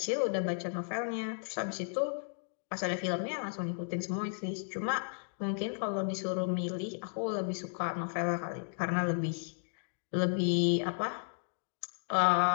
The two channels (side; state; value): right; silent; digital silence